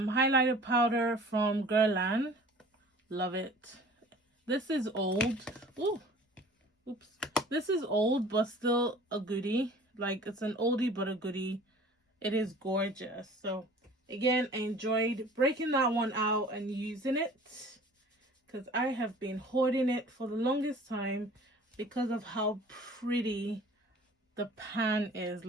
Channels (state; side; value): normal; both; correlation 0.47